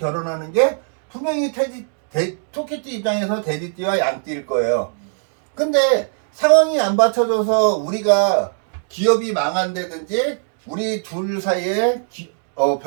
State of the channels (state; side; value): silent; left; digital silence